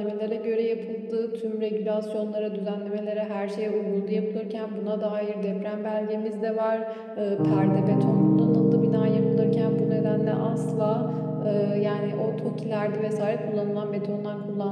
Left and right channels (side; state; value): both; identical; correlation 1.00